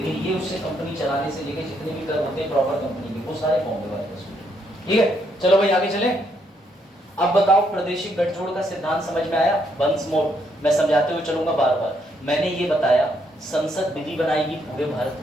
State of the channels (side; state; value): both; normal; correlation 0.74